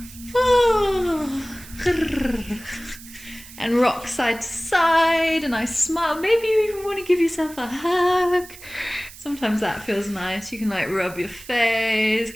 And rock side to side, and I smile. Maybe you even want to give yourself a hug. Sometimes that feels nice. You can like rub your face,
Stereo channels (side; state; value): right; noise; hiss, 18 dB below the sound